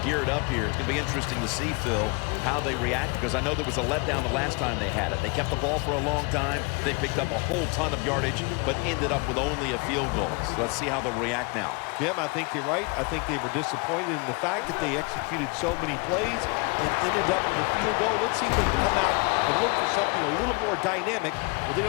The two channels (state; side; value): quieter; right; 30.2 dB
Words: up here. It's going to be interesting to see, Phil, how they react, because I know there was a letdown the last time they had it. They kept the ball for a long time. They picked up a whole ton of yardage, but ended up with only a field goal. So let's see how they'll react now. Jim, I think you're right. I think they were disappointed in the fact that they executed so many plays and ended up with a field goal. Let's see if they can come out and look for something a little more dynamic where they